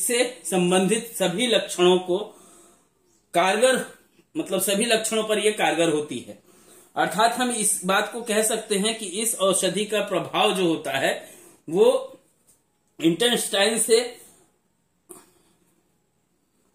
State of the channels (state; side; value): identical; both; correlation 1.00